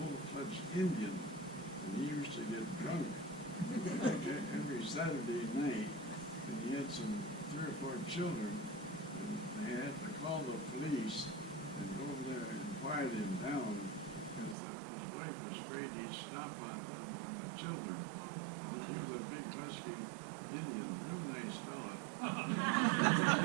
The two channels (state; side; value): drops out; left; at 14.6 s